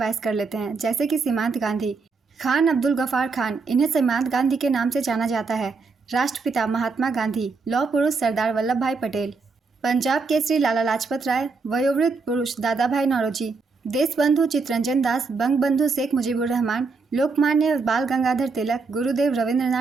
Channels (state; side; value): quieter; left; 4.4 dB